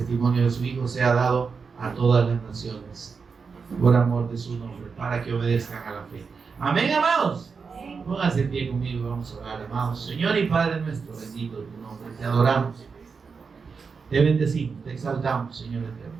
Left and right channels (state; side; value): quieter; left; 5.3 dB